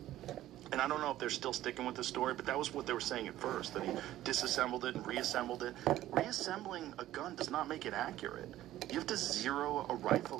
and I don't know if they're still sticking with the story, but that was what they were saying at first, that he disassembled it and reassembled it. Reassembling a gun does not make it accurate. You have to zero a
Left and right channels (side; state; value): left; quieter; 14.1 dB